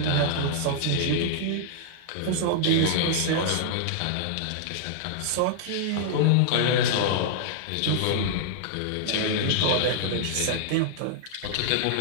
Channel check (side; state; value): both; different; correlation -0.01